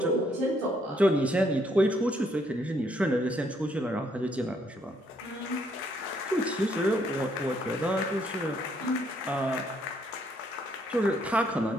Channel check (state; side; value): normal; both; correlation 0.70